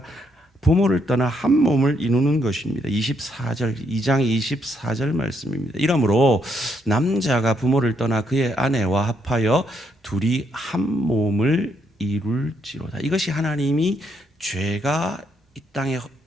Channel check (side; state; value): both; normal; correlation 0.75